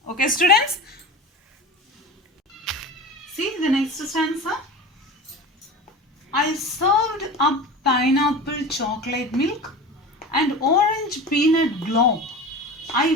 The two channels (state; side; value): normal; both; correlation 0.32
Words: Okay, students? See the next stanza. I served up pineapple chocolate milk and orange peanut globe. I